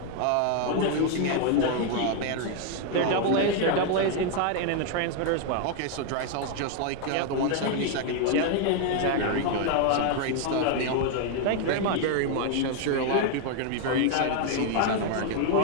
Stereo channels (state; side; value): different; both; correlation 0.00